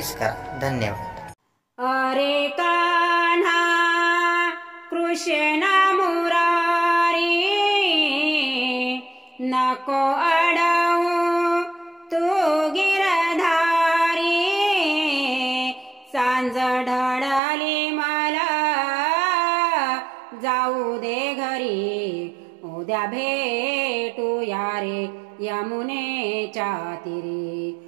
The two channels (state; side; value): drops out; left; at 17.4 s